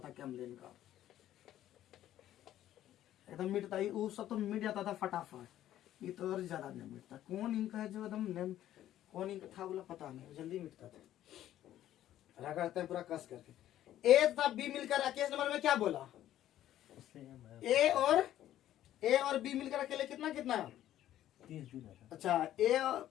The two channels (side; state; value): right; quieter; 12.6 dB